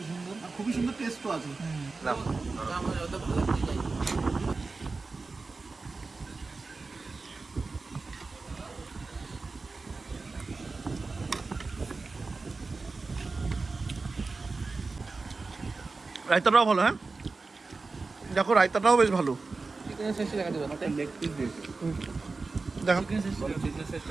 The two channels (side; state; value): left; quieter; 3.9 dB